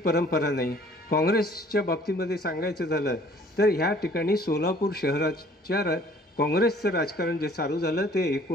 नाही. काँग्रेसच्या बाबतीमध्ये सांगायचं झालं तर ह्या ठिकाणी सोलापूर शहराच्या काँग्रेसचं राजकारण जे चालू झालं ते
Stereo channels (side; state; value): both; normal; correlation 0.55